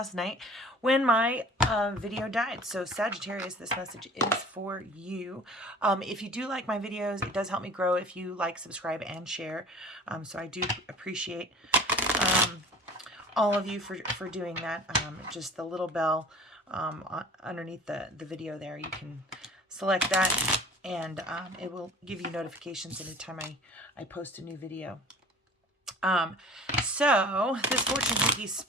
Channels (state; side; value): normal; both; correlation 0.44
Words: night when my video died. So Sagittarius, this message is for you. If you do like my videos, it does help me grow if you like, subscribe, and share. So I do appreciate all of you for doing that. Just the little bell underneath the video there, you can select that, and it will give you notifications anytime I post a new video. So this fortune cookie